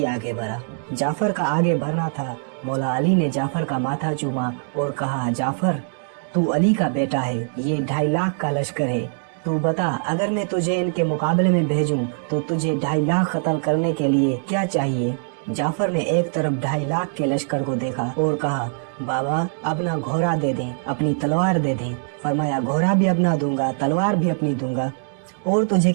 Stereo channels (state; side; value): silent; left; digital silence